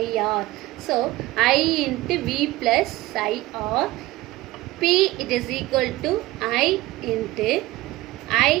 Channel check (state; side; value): quieter; left; 18.4 dB